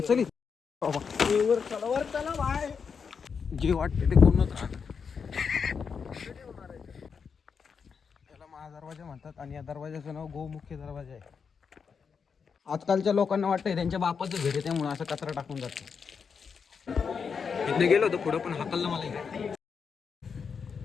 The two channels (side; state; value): right; quieter; 6.0 dB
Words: जे वाटते ते कोणच राहत. त्याला महादरवाजा म्हणतात आणि या दरवाजाचं नाव गोमुख्य दरवाजा आहे. आजकालच्या लोकांना वाटतंय त्यांच्या बापाचं घर आहे त्यामुळे असं कचरा टाकून जातो. इथनं गेलो होतो पुढं पण हाकललं मला इकडे.